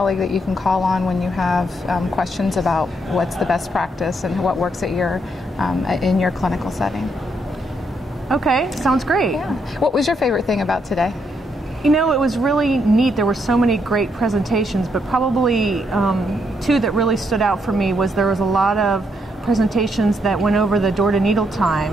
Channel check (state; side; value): normal; both; correlation 0.76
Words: that you can call on when you have questions about what's the best practice and what works at in your clinical setting. Okay, sounds great. Yeah. What was your favorite thing about today? You know, it was really neat. There were so many great presentations, but probably two that really stood out for me was there was a lot of presentations that went over the door-to-needle